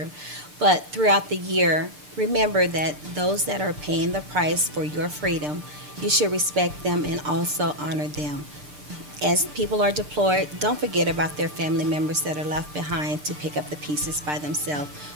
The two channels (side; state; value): left; late; 6.7 ms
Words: But throughout the year, remember that those that are paying the price for your freedom, you should respect them and also honor them. As people are deployed, don't forget about their family members that are left behind to pick up the pieces by themselves,